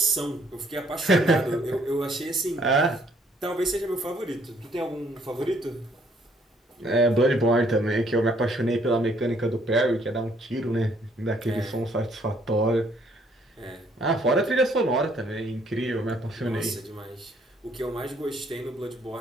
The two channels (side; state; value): both; normal; correlation 0.65